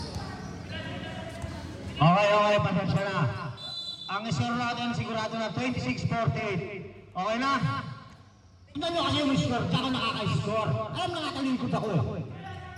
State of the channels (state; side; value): identical; both; correlation 1.00